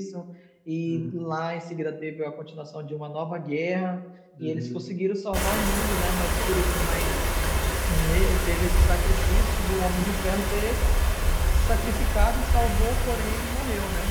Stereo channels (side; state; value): both; identical; correlation 1.00